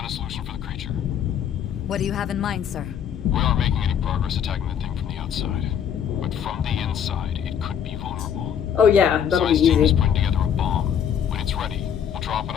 a solution for the creature. What do you have in mind, sir? We aren't making any progress attacking the thing from the outside. But from the inside, it could be vulnerable. Oh yeah, that'll be Science team is easy. putting together a bomb. When it's ready, we'll drop it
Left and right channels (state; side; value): quieter; right; 8.6 dB